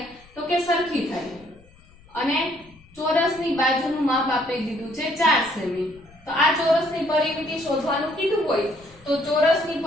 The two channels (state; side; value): noise; left; rumble, 26 dB below the sound